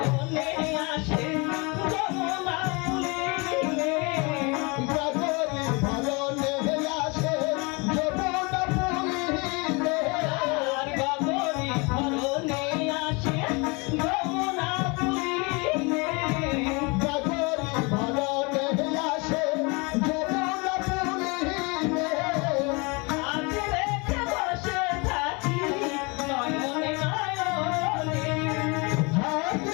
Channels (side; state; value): right; quieter; 28.8 dB